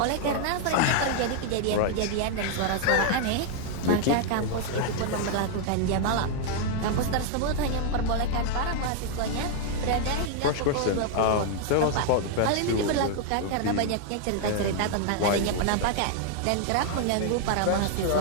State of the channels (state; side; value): different; both; correlation 0.00